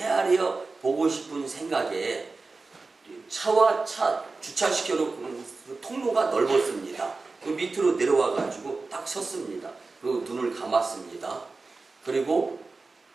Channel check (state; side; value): quieter; left; 3.8 dB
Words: 보고 싶은 생각에 차와 차 주차시켜놓고 통로가 넓었습니다. 그 밑으로 내려와가지고 딱 섰습니다. 그리고 눈을 감았습니다. 그리고